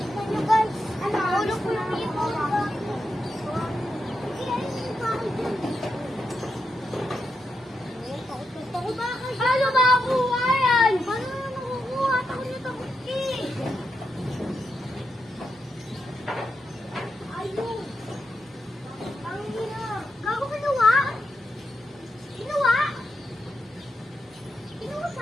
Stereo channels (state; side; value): normal; both; correlation 0.85